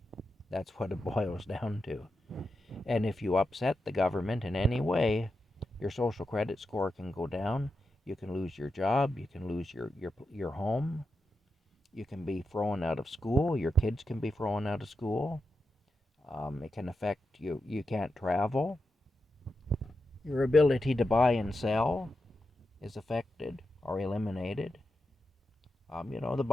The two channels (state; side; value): normal; both; correlation 0.88